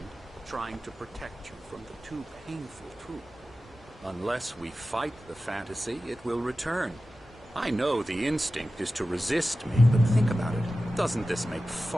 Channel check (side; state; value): both; normal; correlation 0.94